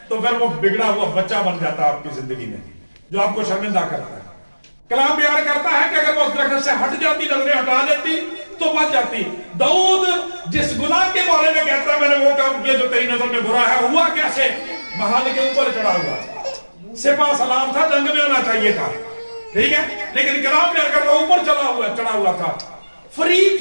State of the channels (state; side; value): inverted; both; correlation -1.00